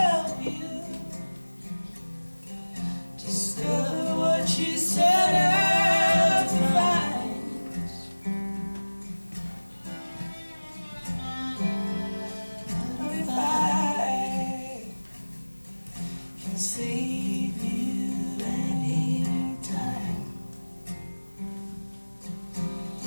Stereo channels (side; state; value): both; inverted; correlation -1.00